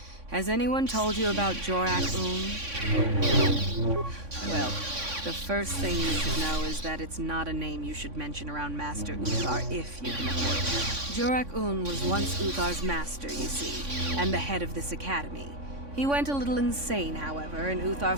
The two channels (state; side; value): late; left; 3.6 ms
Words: Has anyone told you about Jorak-Un? Well, the first thing you should know is that it's not a name you should mention around Master Uthar if you can avoid it. Jorak-Un was once Uthar's master, you see, and the head of this academy. He went a little insane, however, and Uthar